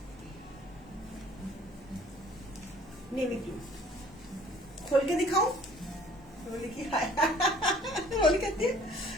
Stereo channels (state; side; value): normal; both; correlation 0.54